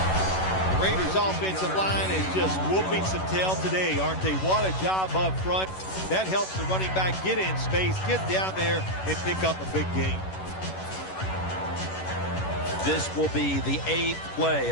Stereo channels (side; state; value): right; late; 11 ms